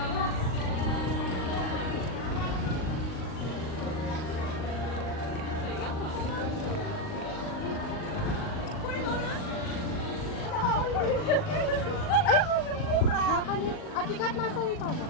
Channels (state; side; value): late; right; 39 ms